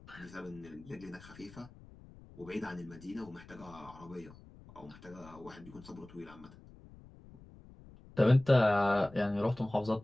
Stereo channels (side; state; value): left; noise; rumble, 20 dB below the sound